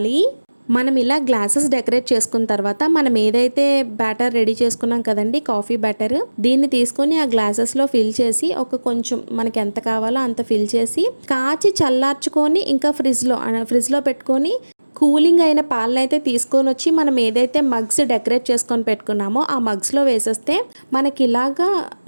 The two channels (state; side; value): inverted; both; correlation -1.00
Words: మనం ఇలా గ్లాసెస్ డెకరేట్ చేసుకున్న తర్వాత మనం ఏదైతే బ్యాటర్ రెడీ చేసుకున్నాం కదండి, కాఫీ బ్యాటర్, దీన్ని తీసుకొని ఆ గ్లాసెస్లో ఫిల్ చేసి ఒక కొంచెం మనకి ఎంత కావాలో అంత ఫిల్ చేసి కాచి చల్లార్చుకొని ఇంకా ఫ్రిడ్జ్లో పెట్టుకొని కూలింగ్ అయిన పాలను అయితే తీసుకొని వచ్చి మనం ఏదైతే మగ్స్ డెకరేట్ చేసుకొని పెట్టుకున్నామో ఆ మగ్స్లో వేసేస్తే మనకి ఇలాగా